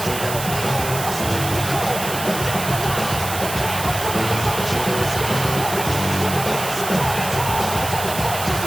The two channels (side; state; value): right; noise; hiss, 7 dB below the sound